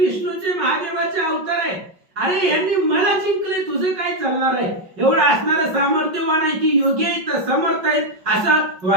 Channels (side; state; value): left; late; 5.4 ms